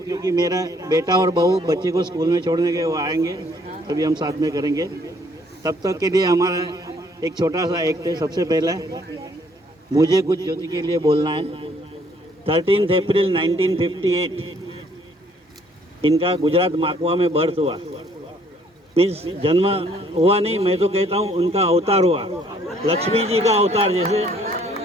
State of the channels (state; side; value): normal; both; correlation 0.63